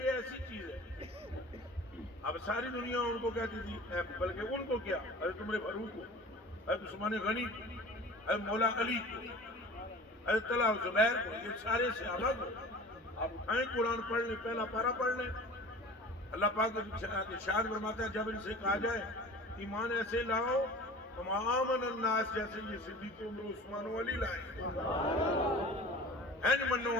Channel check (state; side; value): normal; both; correlation 0.40